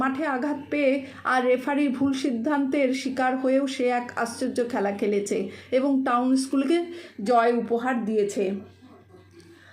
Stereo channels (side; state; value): both; identical; correlation 1.00